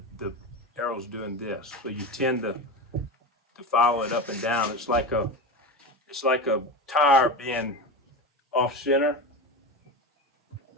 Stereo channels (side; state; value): both; normal; correlation 0.23